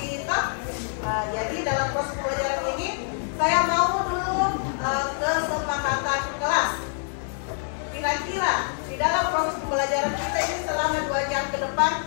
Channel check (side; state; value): right; silent; 61 dB below the other